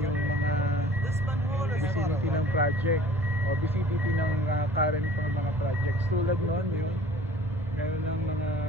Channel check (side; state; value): both; normal; correlation 0.48